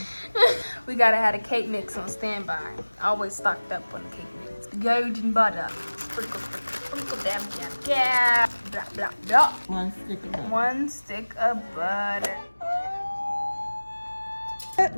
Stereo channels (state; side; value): inverted; both; correlation -1.00